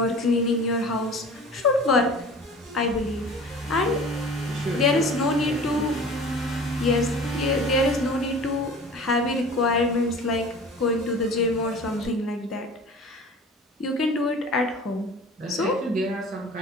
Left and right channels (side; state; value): both; normal; correlation 0.41